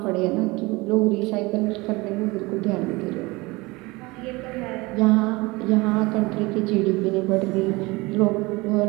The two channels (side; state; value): left; quieter; 23.3 dB